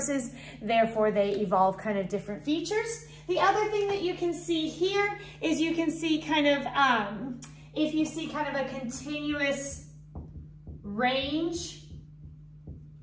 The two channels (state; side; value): identical; both; correlation 1.00